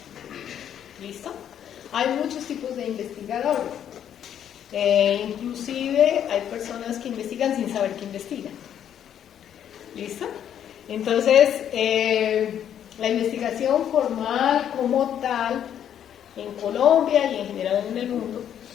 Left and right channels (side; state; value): right; quieter; 9.7 dB